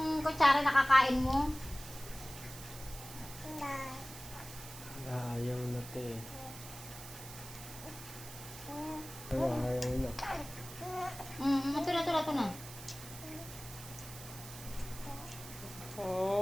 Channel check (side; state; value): right; noise; hiss, 13 dB below the sound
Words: kutsara nakakain mo. Ayaw na te. Ayaw na. Ito na.